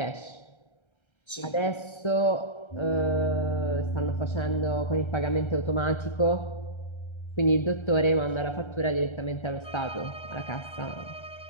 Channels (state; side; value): late; right; 1.3 ms